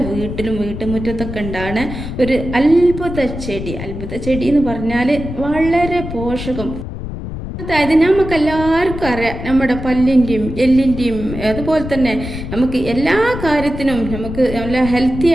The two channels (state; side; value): noise; left; rumble, 8 dB below the sound